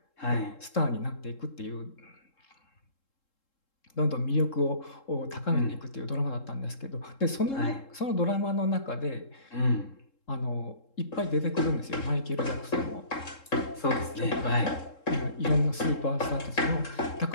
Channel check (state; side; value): late; right; 3.7 ms